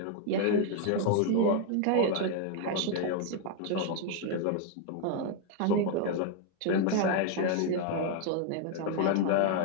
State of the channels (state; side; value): different; both; correlation 0.01